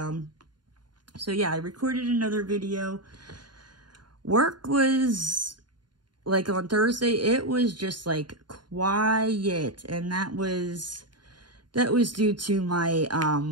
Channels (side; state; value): left; late; 0.71 ms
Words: So yeah, I recorded another video. Work was, like on Thursday, it was just like quiet. And that was due to my